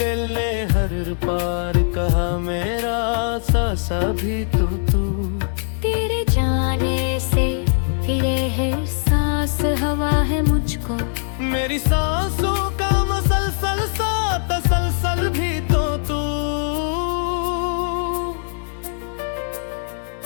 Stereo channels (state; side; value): silent; right; 64 dB below the other